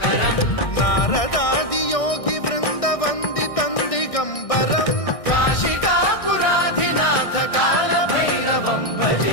नारदादि योगी वृंद वंदितं दिगंबरं काशिकापुराधिनाथ काल भैरवं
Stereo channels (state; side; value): late; right; 1.6 ms